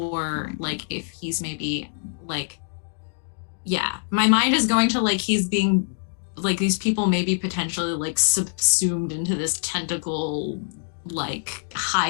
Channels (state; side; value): silent; right; digital silence